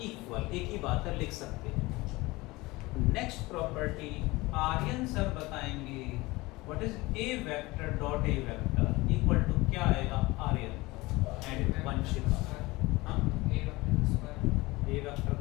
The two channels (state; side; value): quieter; right; 21.5 dB